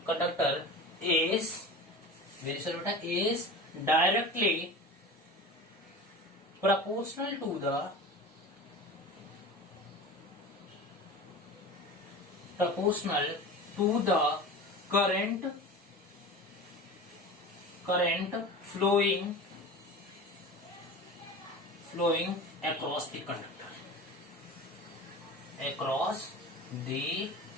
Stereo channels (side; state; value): both; normal; correlation 0.33